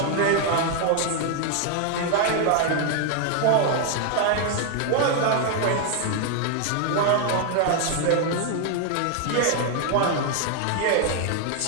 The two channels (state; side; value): different; both; correlation 0.00